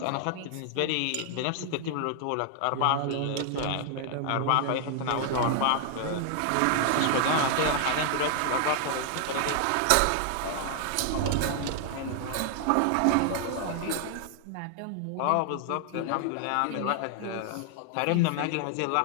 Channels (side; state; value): both; different; correlation 0.00